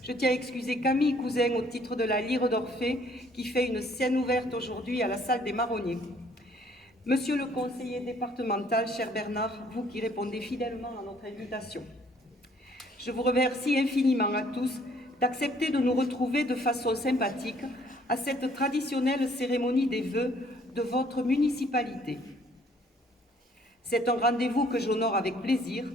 je tiens à excuser Camille Cousin au titre de la Lyre d'Orphée qui fait une scène ouverte aujourd'hui à la salle des Marronniers. Monsieur le conseiller départemental, cher Bernard, vous qui répondez fidèlement à notre invitation, je vous remercie infiniment à tous d'accepter de nous retrouver de façon sympathique à cette traditionnelle cérémonie des vœux de votre municipalité. C'est un rendez-vous que j'honore avec plaisir,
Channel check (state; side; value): normal; both; correlation 0.61